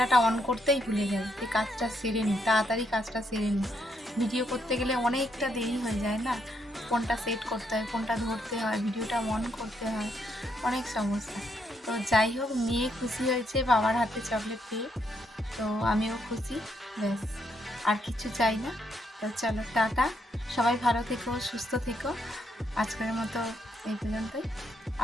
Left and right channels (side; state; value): both; normal; correlation 0.76